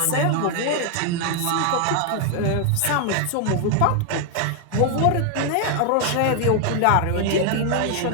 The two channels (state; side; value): different; both; correlation 0.00